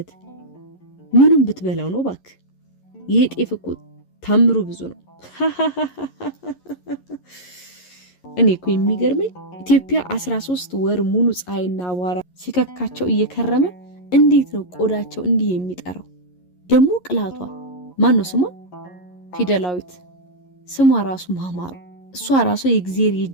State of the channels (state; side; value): late; right; 11 ms